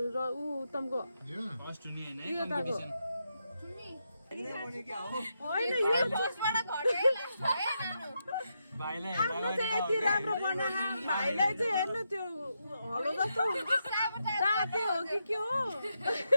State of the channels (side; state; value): both; inverted; correlation -0.83